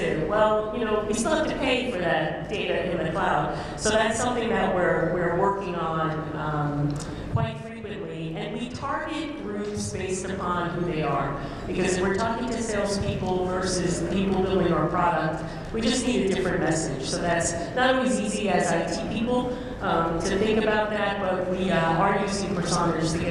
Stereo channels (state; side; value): identical; both; correlation 1.00